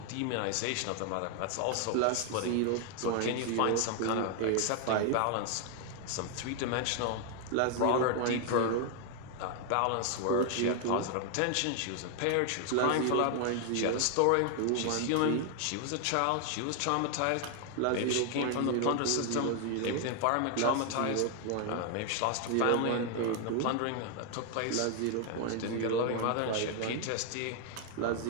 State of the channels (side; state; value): both; different; correlation 0.00